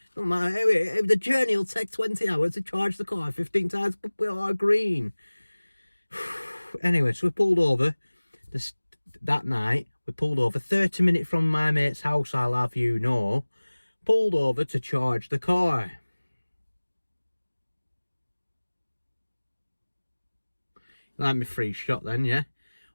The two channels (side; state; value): both; inverted; correlation -1.00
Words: Don't matter. Anyway, the journey will take 20 hours to charge the car 15 times, but we are green. Anyway, so we pulled over that night. We pulled over 30 minutes from my mate's house, I'll have you know. Pulled over to charge the car. Like my free shot then, yeah?